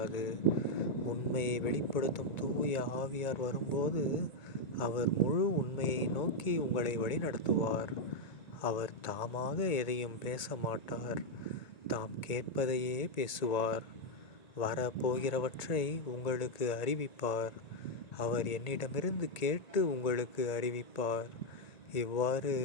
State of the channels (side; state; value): right; late; 1.9 ms